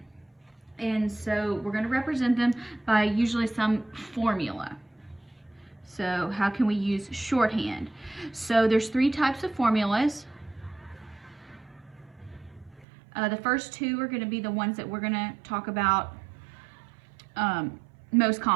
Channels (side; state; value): left; drops out; at 12.9 s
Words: And so we're going to represent them by usually some formula. So how can we use shorthand? So there's 3 types of formulas. The first 2 are going to be the ones that we're going to talk about most